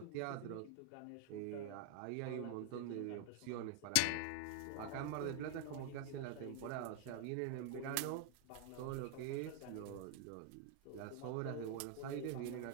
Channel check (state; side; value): different; both; correlation 0.00